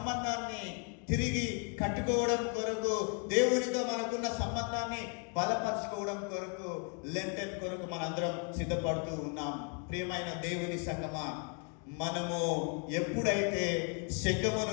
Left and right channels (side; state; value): right; quieter; 38.6 dB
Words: తిరిగి కట్టుకోవడం కొరకు, దేవునితో మనకున్న సంబంధాన్ని బలపరుచుకోవడం కొరకు, లెంటన్ కొరకు మనందరం సిద్ధపడుతూ ఉన్నాం. ప్రియమైన దేవుని సంగమా, మనము ఎప్పుడైతే